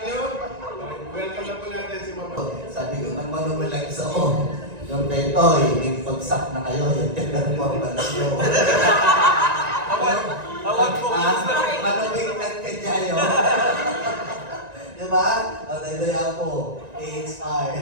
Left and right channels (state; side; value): late; left; 1.9 ms